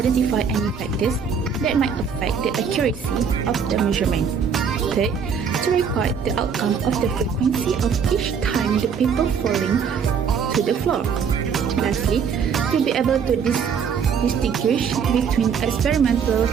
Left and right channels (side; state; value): left; quieter; 6.6 dB